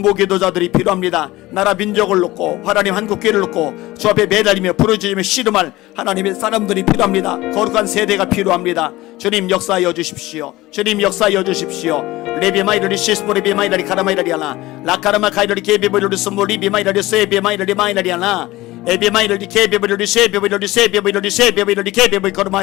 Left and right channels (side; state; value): right; quieter; 18.4 dB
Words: 필요합니다. 나라 민족을 놓고 하나님 한국교회를 놓고 주 앞에 매달리며 부르짖으며 씨름할 하나님의 사람들이 필요합니다. 거룩한 세대가 필요합니다. 주님 역사하여 주십시오. 주님 역사하여 주십시오. 레비마이라리 시스포리비마이라리 카라마이라리아나 라카라마 카이라리 케비보리르 스몰리비마이라리 세비마이라리 마이라리아나 에비마이라리 케비보리르 세비보리르 세비보리르 세비보리르 케비보리